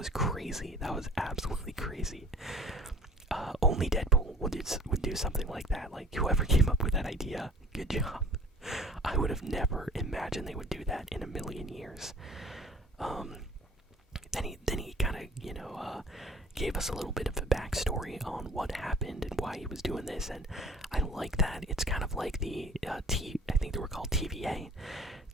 crazy. That was absolutely crazy. Only Deadpool would do something like that. Like, whoever came up with that idea, good job. I would have never imagined they would do that in a million years. Then he kind of, gave us a little bit of a backstory on what happened and why he was doing this, and I like that. It's kind of like the I think they were called TVA.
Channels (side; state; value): both; normal; correlation 0.48